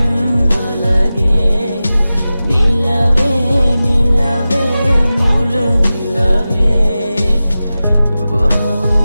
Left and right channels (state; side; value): inverted; both; correlation -0.95